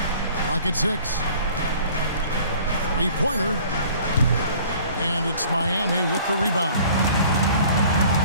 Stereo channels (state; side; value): inverted; both; correlation -0.51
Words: Clock at 6. Three-pointer. And it's Miami with the rebound.